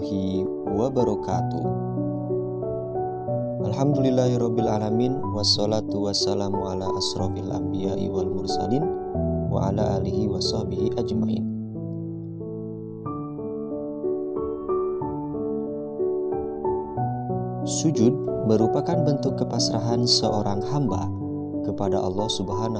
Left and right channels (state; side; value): identical; both; correlation 1.00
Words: wabarakatuh. Alhamdulillahirrabbilalamin. Wassalatu wassalamu ala asrofil anbiya'i wal mursalin wa ala alihi wa sahbihi ajmain. Sujud merupakan bentuk kepasrahan seorang hamba kepada Allah